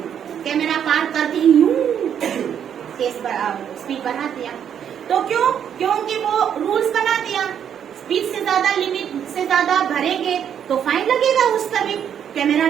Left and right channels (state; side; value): quieter; left; 8.7 dB